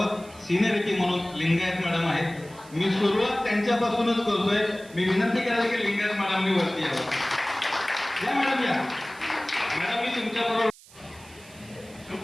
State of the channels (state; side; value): noise; right; hiss, 23 dB below the sound